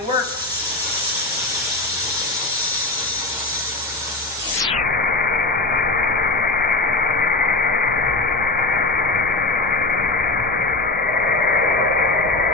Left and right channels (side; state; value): right; quieter; 3.3 dB